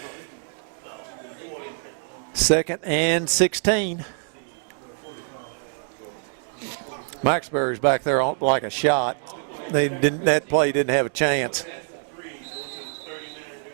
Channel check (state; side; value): silent; left; 62 dB below the other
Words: Second and 16. Maxbury's back there like a shot. That play didn't have a chance.